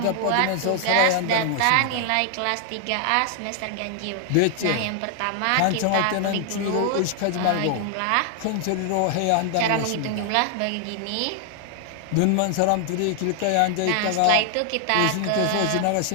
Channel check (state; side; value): different; both; correlation 0.00